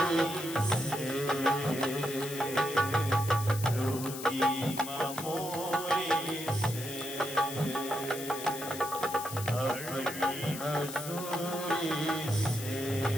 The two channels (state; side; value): noise; left; hiss, 9 dB below the sound